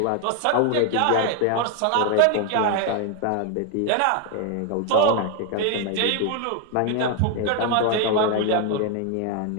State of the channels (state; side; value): different; both; correlation 0.01